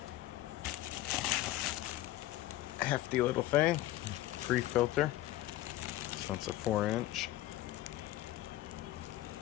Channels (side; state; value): right; quieter; 15.7 dB